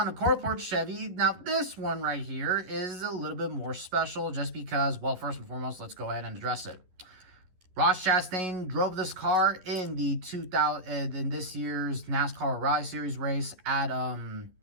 Corport Chevy. Now, this one right here is a little bit more special just because, well, first and foremost, let's go ahead and address it. Ross Chastain drove this car in in this year's NASCAR O'Reilly Series race at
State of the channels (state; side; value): late; left; 11 ms